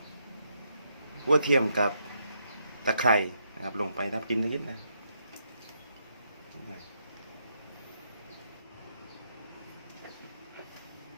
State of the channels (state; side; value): inverted; both; correlation -0.78